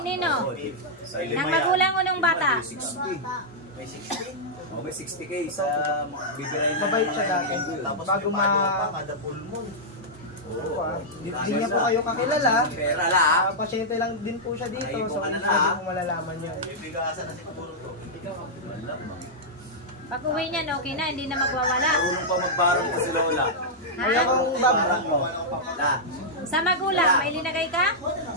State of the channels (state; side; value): normal; both; correlation -0.08